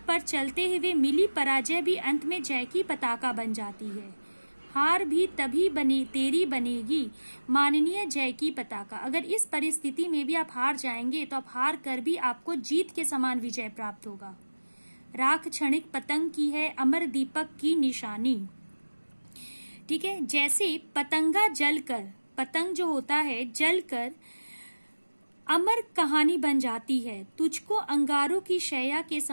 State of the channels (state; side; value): inverted; both; correlation -1.00